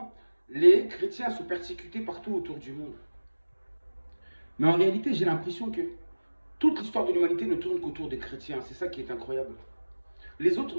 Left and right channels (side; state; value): both; inverted; correlation -1.00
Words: les chrétiens sont persécutés partout autour du monde. Mais en réalité, j'ai l'impression que toute l'histoire de l'humanité ne tourne qu'autour des chrétiens. C'est ça qui est incroyable. Les